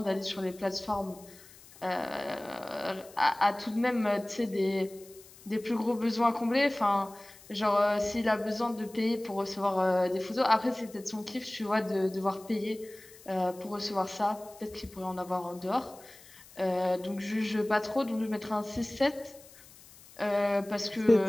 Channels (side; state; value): left; noise; hiss, 22 dB below the sound